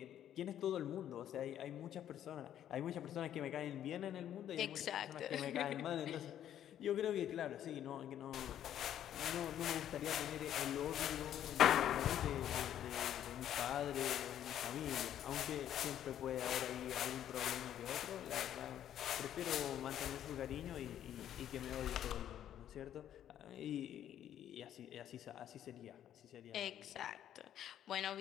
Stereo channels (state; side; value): quieter; right; 10.8 dB